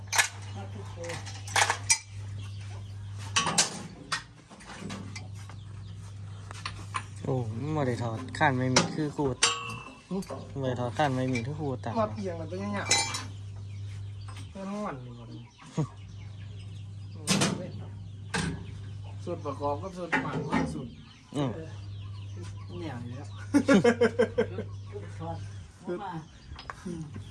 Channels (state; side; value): identical; both; correlation 1.00